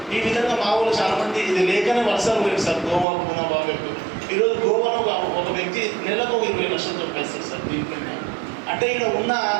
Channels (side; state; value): left; drops out; at 3.1 s